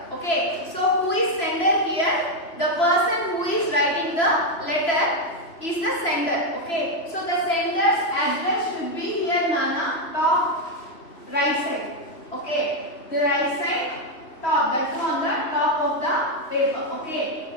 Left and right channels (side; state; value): right; late; 3.0 ms